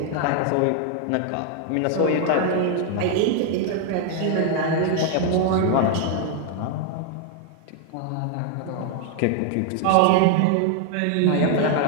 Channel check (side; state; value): both; different; correlation 0.00